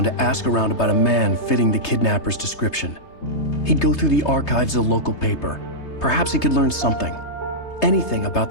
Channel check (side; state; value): right; late; 3.3 ms